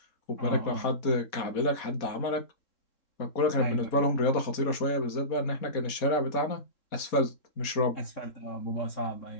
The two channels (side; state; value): right; late; 4.1 ms